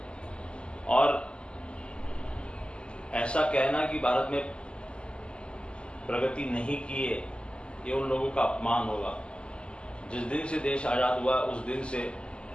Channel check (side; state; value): right; late; 0.051 ms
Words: और ऐसा कहना कि भारत में प्रगति नहीं की है, ये उन लोगों का अपमान होगा। जिस दिन से देश आज़ाद हुआ उस दिन से